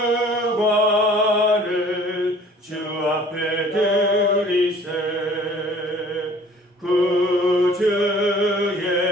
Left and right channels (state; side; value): normal; both; correlation 0.51